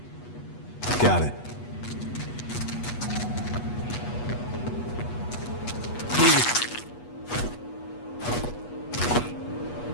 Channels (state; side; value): late; right; 8.3 ms